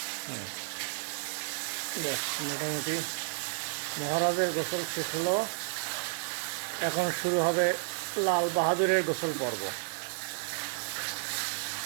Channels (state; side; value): silent; left; digital silence